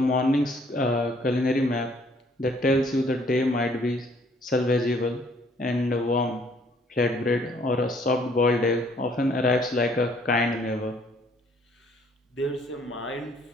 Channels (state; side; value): normal; both; correlation 0.62